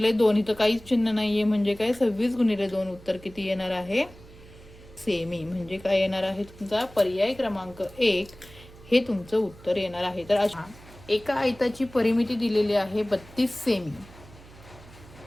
2. इथं काहीच चिन्ह नाहीये म्हणजे काय 26 गुणिले 2 उत्तर किती येणार आहे सेमी. म्हणजे काय येणार आहे तुमचा पर्याय क्रमांक 1 हे तुमचं उत्तर येणार आहे. तर अशा एका आयताची परिमिती दिलेली आहे 32 सेमी.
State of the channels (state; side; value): noise; right; hum, 21 dB below the sound